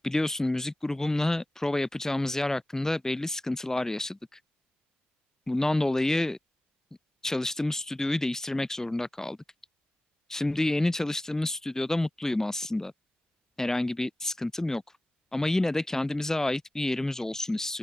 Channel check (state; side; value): normal; both; correlation 0.96